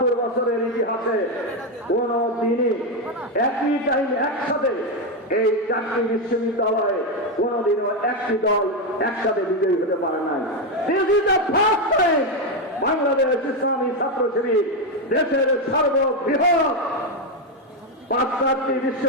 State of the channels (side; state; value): both; normal; correlation 0.07